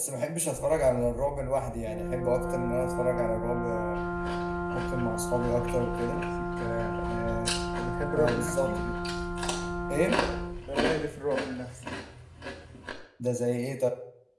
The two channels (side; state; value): both; identical; correlation 1.00